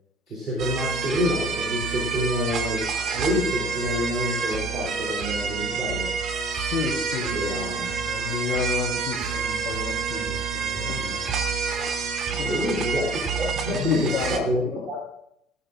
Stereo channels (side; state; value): both; normal; correlation 0.49